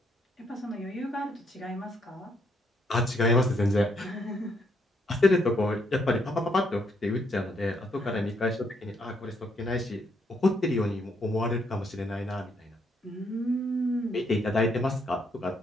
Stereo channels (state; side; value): normal; both; correlation 0.73